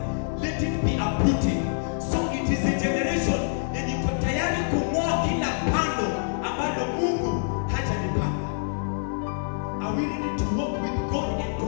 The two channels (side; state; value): right; silent; digital silence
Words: let it be uprooted. So it is a generation yenye iko tayari kung'oa kila pando ambalo Mungu hajalipanda. Are we ready to walk with God and to